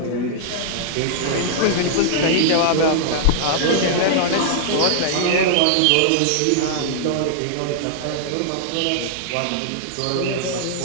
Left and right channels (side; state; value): both; different; correlation -0.01